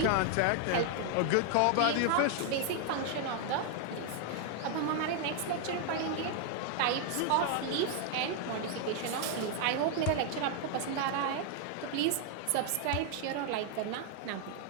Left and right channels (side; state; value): both; different; correlation 0.00